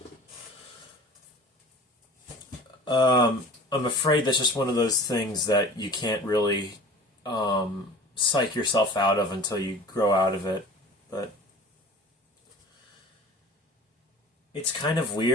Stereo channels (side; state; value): both; normal; correlation 0.42